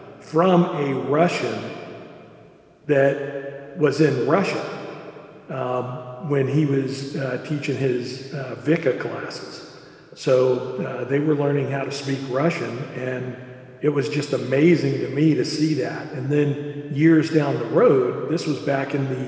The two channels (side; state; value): both; identical; correlation 1.00